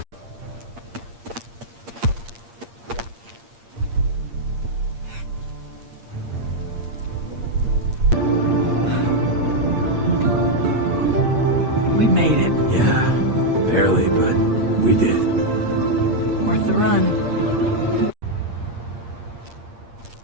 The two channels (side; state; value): left; late; 8.6 ms